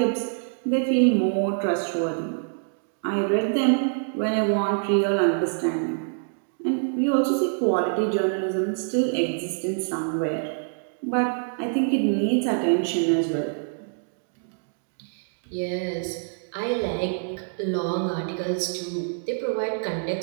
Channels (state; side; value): silent; left; digital silence